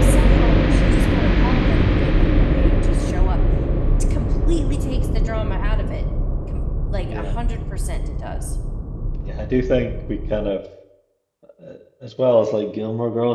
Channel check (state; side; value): identical; both; correlation 1.00